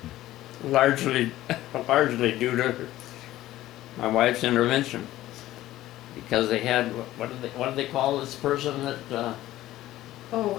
largely due to my wife's intervention, because they had, what do they call this person that,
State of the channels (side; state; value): right; quieter; 15.1 dB